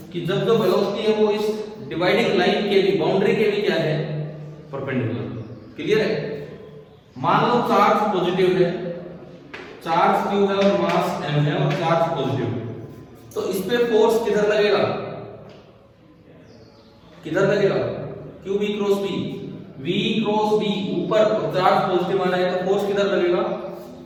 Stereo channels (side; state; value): both; identical; correlation 1.00